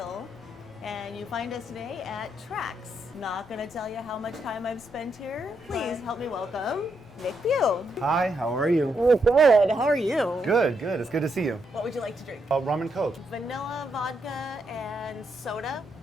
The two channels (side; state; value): both; normal; correlation 0.79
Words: and you find us today at Trax. Not going to tell you how much time I've spent here. Please help me welcome Nick Pugh. Hi, how are you? Oh, good. How are you? Good. It's good to see you. What would you like to drink? Rum and Coke. Vanilla, vodka, and soda.